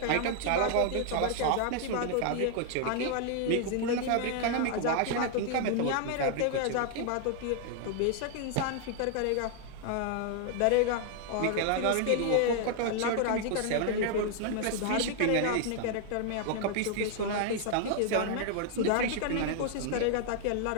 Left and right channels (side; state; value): both; different; correlation 0.00